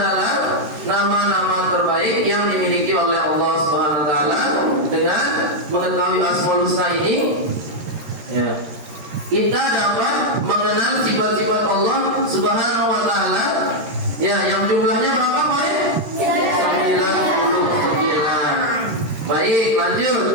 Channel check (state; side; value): late; left; 13 ms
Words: nama-nama terbaik yang dimiliki oleh Allah Subhanahu wa taala. Dengan mengetahui Asmaul Husna ini, ya, kita dapat mengenal sifat-sifat Allah Subhanahu wa taala, ya, yang jumlahnya berapa, Pak? 99. Baik, lanjut.